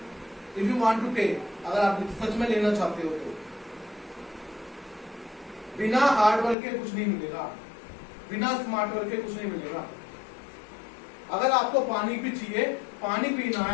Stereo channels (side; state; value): right; drops out; at 6.6 s